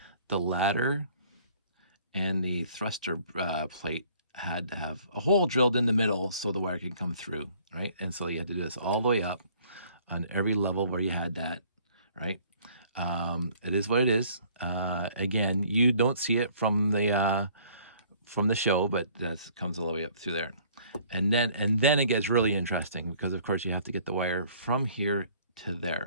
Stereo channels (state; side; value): inverted; both; correlation -0.57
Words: the ladder and the thruster plate had to have a hole drilled in the middle so the wire could come through, right? And so you had to do this all the way up on every level where you had that, right? It is what it is. Again, you don't see it from the show, but that comes all the way up through there. And then it gets really interesting because of course you have to get the wire from here to